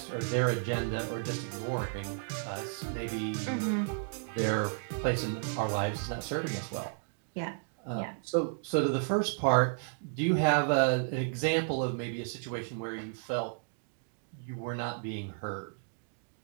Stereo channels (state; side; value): silent; left; digital silence